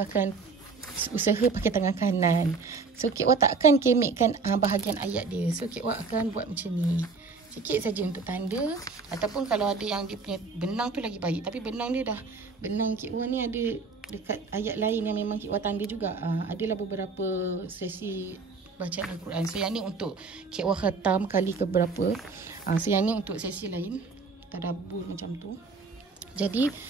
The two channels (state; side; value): quieter; left; 4.5 dB